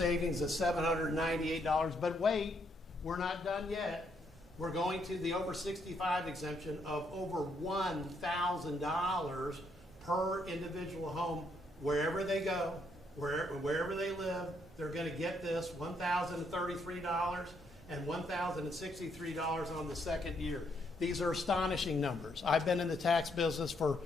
of $798. But wait, we're not done yet. We're going to the over 65 exemption of over $1,000 per individual home, wherever they go, wherever they live. They're going to get this $1,033 and $1,063 on the second year. These are astonishing numbers. I've been in the tax business for,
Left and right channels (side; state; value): both; normal; correlation 0.74